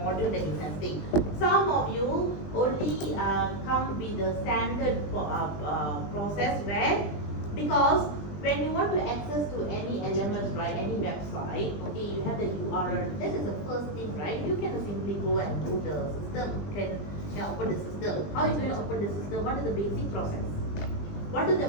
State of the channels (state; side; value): late; right; 20 ms